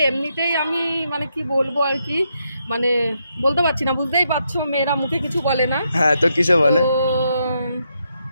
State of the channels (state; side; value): inverted; both; correlation -0.80